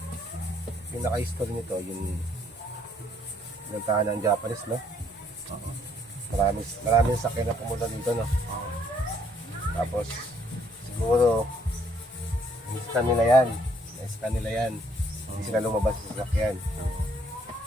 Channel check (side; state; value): both; normal; correlation 0.66